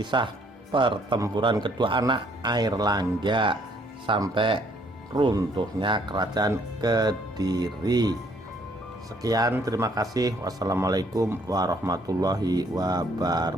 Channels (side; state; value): both; normal; correlation 0.65